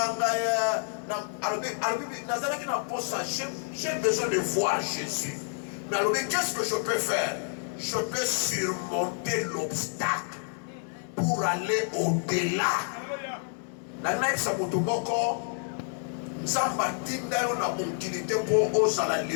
ye, na albi nazala ki na posa, j'ai besoin de voir Jésus. Mais alors, qu'est-ce que je peux faire? Je peux surmonter l'obstacle pour aller au-delà. La naïf sa motomoko, Samba tinda yo na mobilité pour oser la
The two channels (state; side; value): silent; right; 59 dB below the other